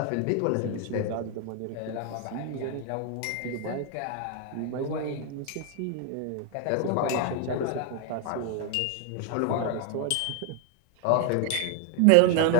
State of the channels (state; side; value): different; both; correlation 0.01